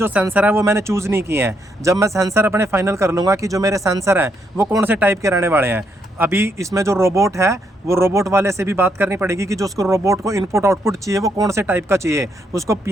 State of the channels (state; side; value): normal; both; correlation 0.76